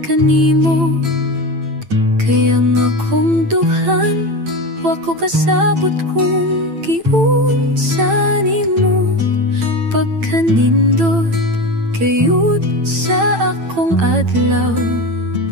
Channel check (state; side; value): late; left; 9.0 ms